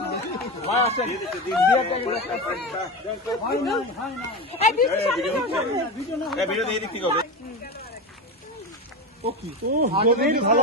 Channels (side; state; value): both; normal; correlation 0.21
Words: ভাই আসেন, ভিডিও দিয়ে দিক হবে।